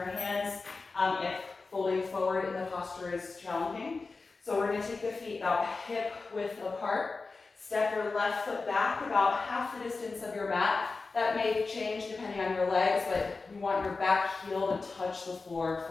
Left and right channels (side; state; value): right; quieter; 4.0 dB